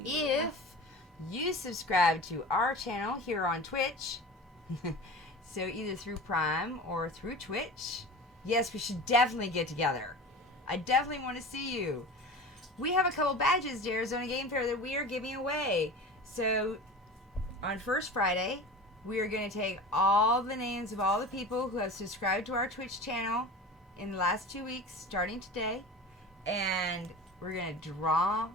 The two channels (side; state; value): both; normal; correlation 0.34